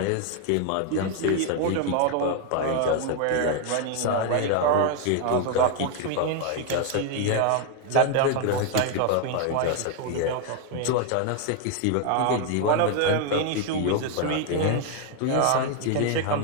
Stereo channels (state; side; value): different; both; correlation 0.00